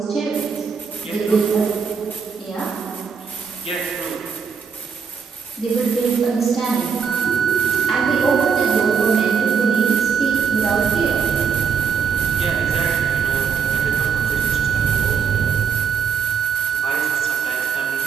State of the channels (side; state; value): left; quieter; 6.2 dB